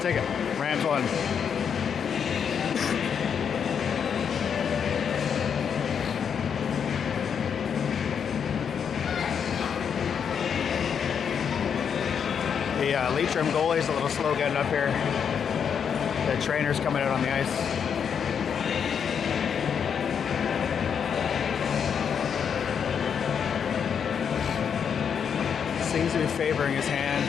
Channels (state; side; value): quieter; right; 7.3 dB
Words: take it. Rams won. The Leitrim goalie's a little slow getting up here. The trainer's coming out on the ice. Seems to be favoring his hand.